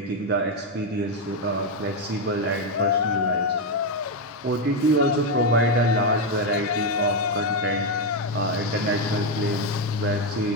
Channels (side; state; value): both; normal; correlation 0.05